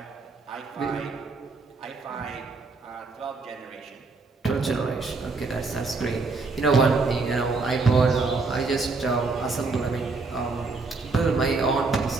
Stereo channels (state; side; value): quieter; left; 3.9 dB